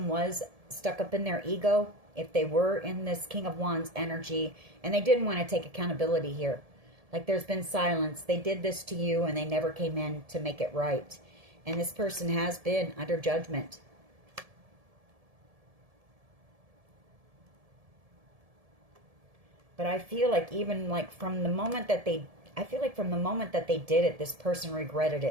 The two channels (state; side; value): late; left; 1.7 ms